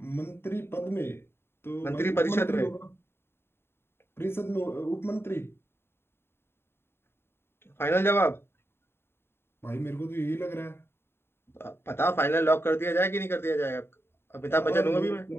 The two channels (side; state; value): right; late; 0.11 ms